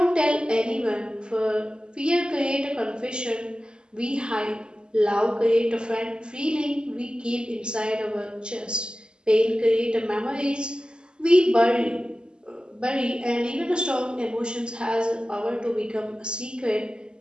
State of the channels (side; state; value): left; late; 0.049 ms